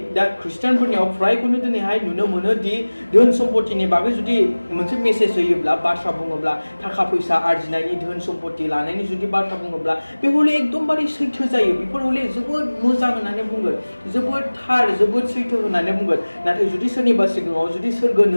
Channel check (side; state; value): both; inverted; correlation -1.00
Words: दा ख्रिस्टियानफोरनियाव फ्रायखौनो दिनैहाय नुनो मोनो दि धोन सम्पतिनि बागै जुदि मोनसे मेसेज होयोब्ला बाथ्रा बुङोब्ला थाखा फैसा आरजिनायनि धोन सम्पति लानायनि जुदि बाथ्रा बुङोब्ला बे हले एकदमबारे सैथो जायो बेफोर हले जोबोद मोजां होननानै बुंगोन जोबोद थार जोबोद सैथो होननानै बुंगोन नाथाय जुदि सोरनिबा सिगाङाव जुदि सोरगो